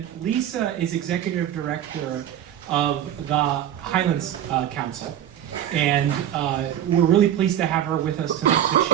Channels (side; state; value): left; quieter; 10.8 dB